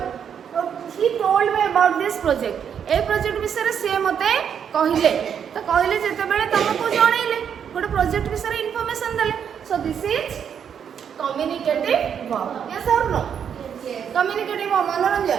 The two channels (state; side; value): quieter; left; 7.9 dB